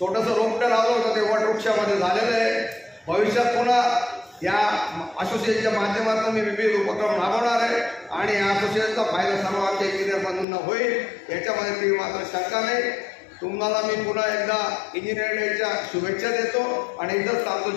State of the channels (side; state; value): right; drops out; at 10.5 s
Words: रोपटं लावलं होतं ते वटवृक्षामध्ये झालेलं आहे. भविष्यात पुन्हा या असोसिएशनच्या माध्यमातून मी विविध उपक्रम राबवणार आहे आणि या असोसिएशनचा फायदा सर्व आमच्या इंजिनियर बंधूंना होईल याच्यामध्ये ती मात्र शंका नाही. तुम्हाला मी पुन्हा एकदा इंजिनिअरिंग डेच्या शुभेच्छा देतो आणि इथंच थांबतो.